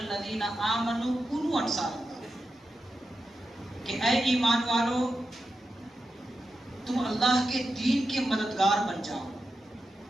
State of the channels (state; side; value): normal; both; correlation 0.90